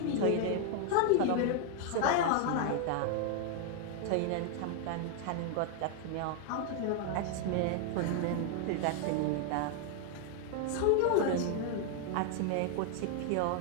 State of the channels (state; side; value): different; both; correlation 0.00